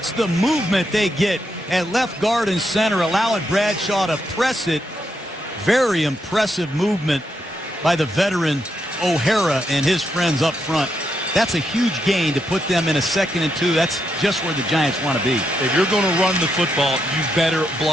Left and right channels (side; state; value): both; normal; correlation 0.81